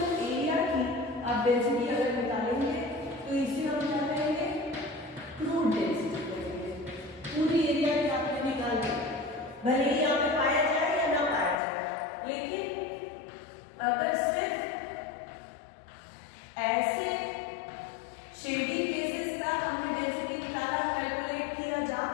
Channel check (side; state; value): right; drops out; at 11.6 s